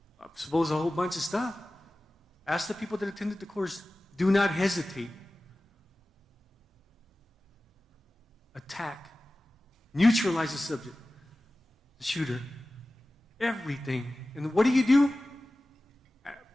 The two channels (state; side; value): normal; both; correlation 0.96